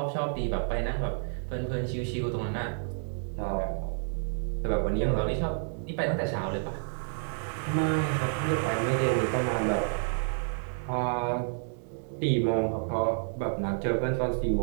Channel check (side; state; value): left; silent; digital silence